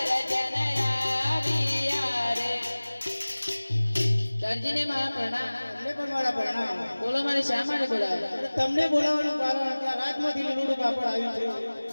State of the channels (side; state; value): both; inverted; correlation -1.00